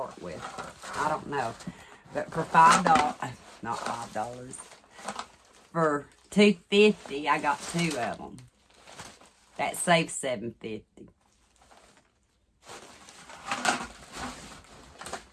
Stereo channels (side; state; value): both; identical; correlation 1.00